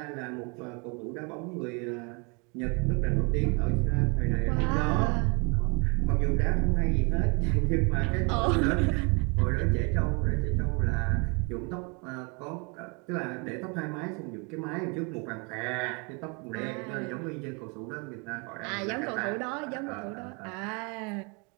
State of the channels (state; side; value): quieter; left; 32.3 dB